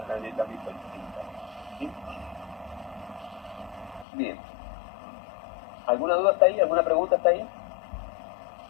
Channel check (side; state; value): right; drops out; at 4.0 s